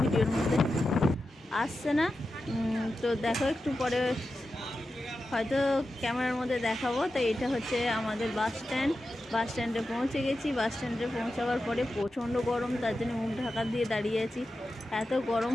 ভিডিওর মধ্যে আসছে না। তো দেখো একটু পরে হয়তো ক্যামেরার মধ্যে দেখাবো। তো এটা হচ্ছে আমাদের বাস স্ট্যান্ডে পৌঁছে গেছি। বাস স্ট্যান্ডে পৌঁছাবার পরে প্রচণ্ড গরম, তার জন্য মুখ ঢাকা দিয়ে দাঁড়িয়ে আছি। এত গরম,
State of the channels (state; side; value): normal; both; correlation 0.91